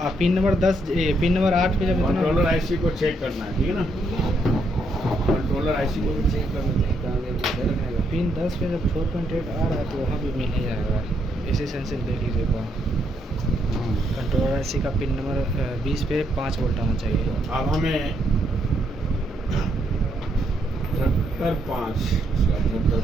पिन नंबर 8 पे जब इतना कंट्रोलर आईसी को चेक करना है, ठीक है ना? कंट्रोलर आईसी को भी चेक करना है, कहाँ गया? इधर में है। पिन 10 पे जब 4.8 आ रहा है तो वहाँ भी मिल ही जाएगा। एसी सेंसर देख लीजिए वहाँ। कंट्रोलर आईसी का पिन नंबर 20 पे 5 वोल्ट आना चाहिए। अब हमें 78.5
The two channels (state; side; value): normal; both; correlation 0.75